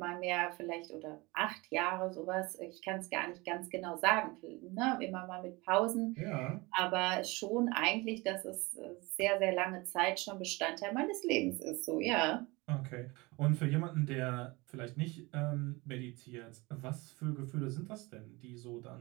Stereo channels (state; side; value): quieter; left; 24.1 dB